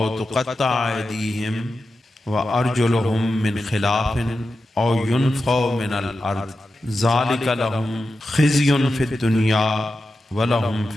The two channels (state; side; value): normal; both; correlation 0.91